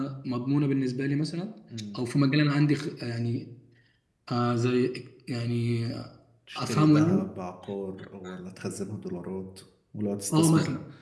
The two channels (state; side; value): identical; both; correlation 1.00